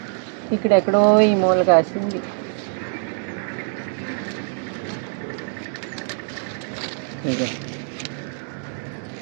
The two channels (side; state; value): left; silent; 63 dB below the other